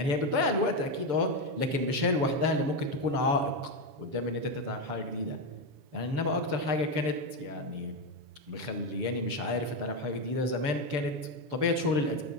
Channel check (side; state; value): left; late; 6.8 ms